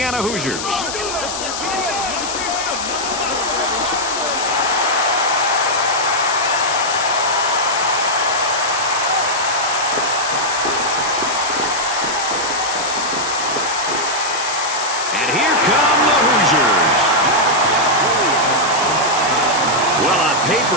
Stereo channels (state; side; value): noise; left; hiss, 6 dB below the sound